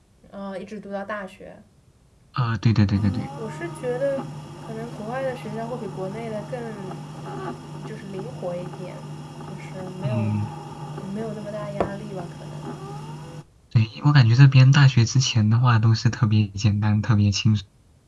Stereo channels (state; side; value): identical; both; correlation 1.00